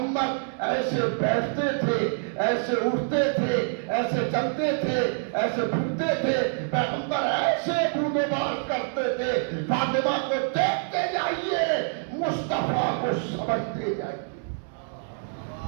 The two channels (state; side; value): silent; left; 61 dB below the other